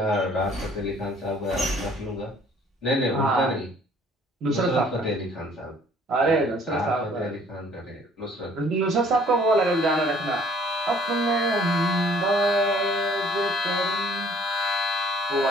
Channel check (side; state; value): both; normal; correlation 0.57